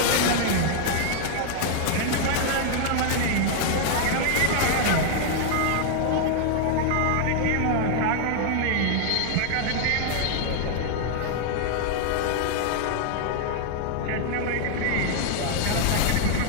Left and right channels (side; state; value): both; different; correlation 0.00